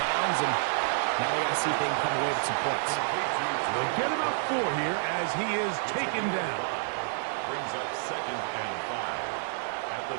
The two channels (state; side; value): silent; left; 55 dB below the other